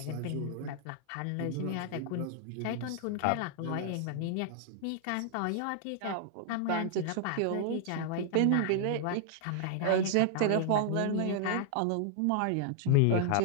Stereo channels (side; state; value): both; different; correlation -0.01